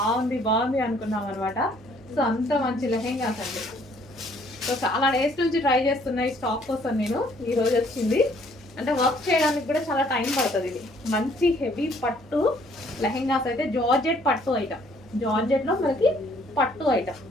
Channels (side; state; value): both; normal; correlation 0.62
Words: బాగుంది అనుకున్నాం అనమాట. సో అంత మంచి లెహెంగాస్ అండి. సో చాలా డేస్ నుంచి ట్రై చేస్తున్నా ఈ స్టాక్ కోసం నేను. ఈరోజు వచ్చింది, అంటే వర్క్ చేయడానికి కూడా చాలా టైం పడుతుంది. ఇది మంచి హెవీ పట్టు లెహెంగాస్ అయితే, జార్జెట్ పట్టు ఐటమ్, జార్జెట్లో మనకి పట్టు ఐటమ్.